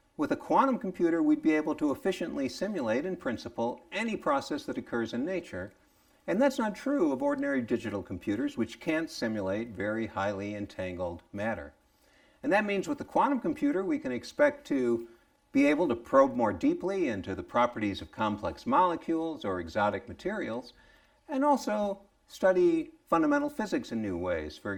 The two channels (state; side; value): identical; both; correlation 1.00